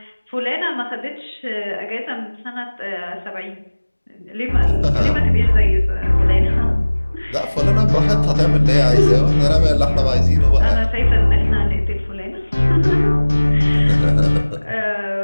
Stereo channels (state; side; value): inverted; both; correlation -1.00